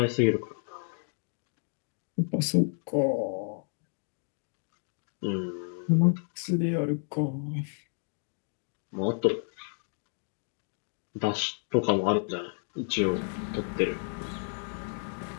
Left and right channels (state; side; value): silent; right; 57 dB below the other